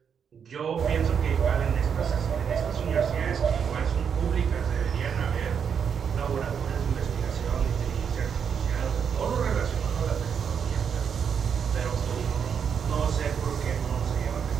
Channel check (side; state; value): left; quieter; 7.2 dB